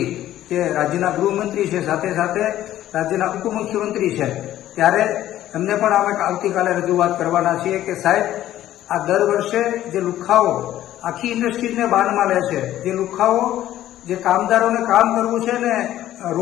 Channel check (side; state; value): right; quieter; 13.2 dB